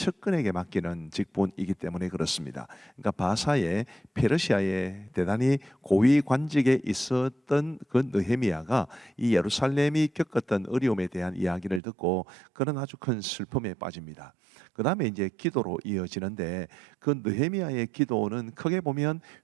맡기는 직분이기 때문에 그렇습니다. 그러니까 페르시아의 대단히 고위 관직에 있었던 그 느헤미야가 이 예루살렘이 겪었던 어려움에 대한 이야기를 듣고 그는 아주 큰 슬픔에 빠집니다. 그 다음에 이제 기도로 이어지는데, 그 느헤미야의 기도는 크게 보면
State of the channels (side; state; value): left; drops out; at 11.8 s